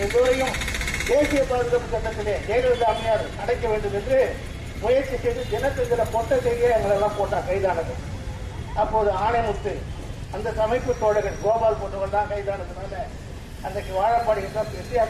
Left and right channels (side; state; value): both; identical; correlation 1.00